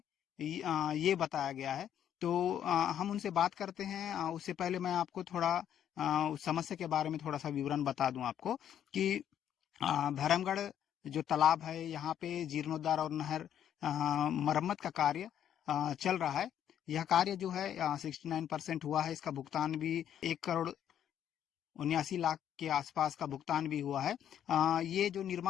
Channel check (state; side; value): quieter; right; 10.0 dB